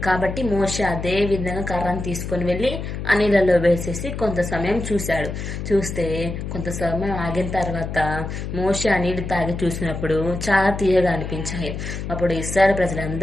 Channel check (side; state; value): left; noise; hum, 6 dB below the sound